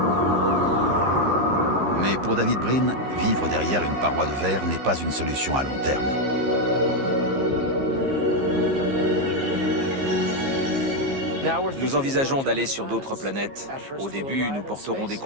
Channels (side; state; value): left; late; 15 ms